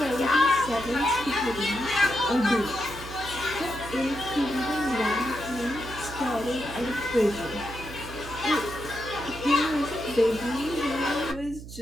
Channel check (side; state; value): right; noise; hum, 13 dB below the sound